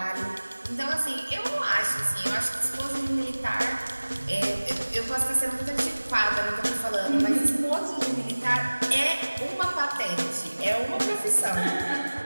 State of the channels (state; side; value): inverted; both; correlation -1.00